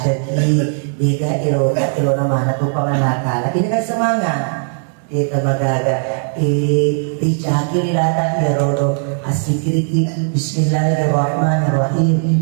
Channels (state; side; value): silent; left; digital silence